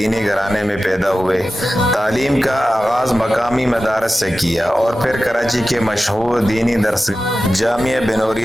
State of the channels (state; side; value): normal; both; correlation 0.94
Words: گھرانے میں پیدا ہوئے۔ تعلیم کا آغاز مقامی مدارس سے کیا اور پھر کراچی کے مشہور دینی درسگاہ جامعہ